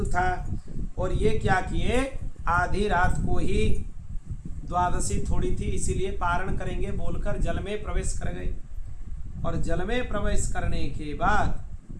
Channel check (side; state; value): both; identical; correlation 1.00